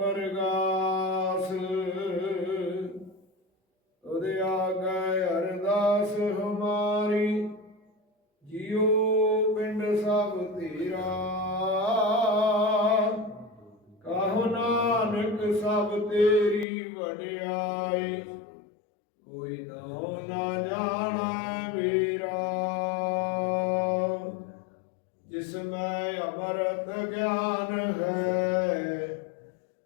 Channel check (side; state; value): right; drops out; at 16.7 s